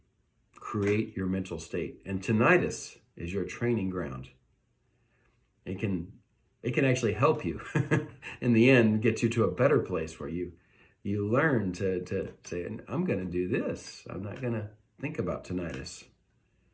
create your mental state. And tinnitus is your training ground. It can actually help you in the end, get you to a better place where you learn to say, I'm going to do this. I'm not going to think about tinnitus.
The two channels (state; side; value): identical; both; correlation 1.00